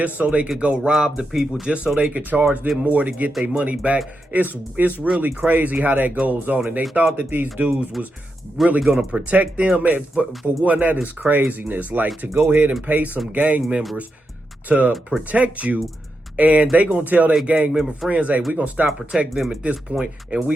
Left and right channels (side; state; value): both; normal; correlation 0.86